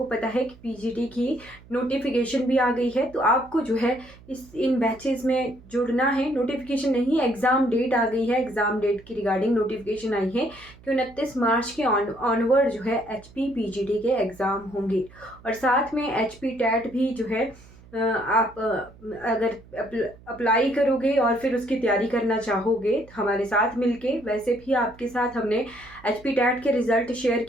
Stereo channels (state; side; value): noise; right; hum, 23 dB below the sound